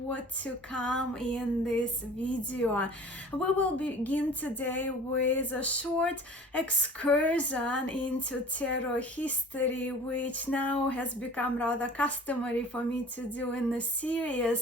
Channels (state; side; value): normal; both; correlation 0.44